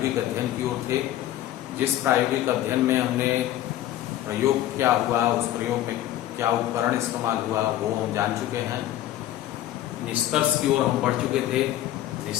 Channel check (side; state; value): right; quieter; 13.3 dB